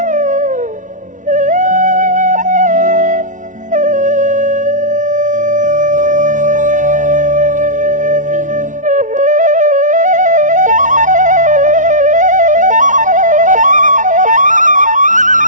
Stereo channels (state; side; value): late; left; 0.37 ms